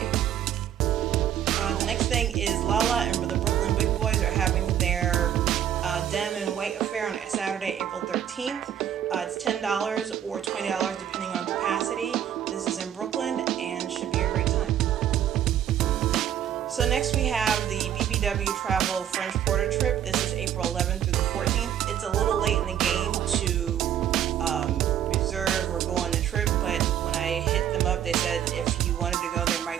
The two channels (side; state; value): left; quieter; 10.2 dB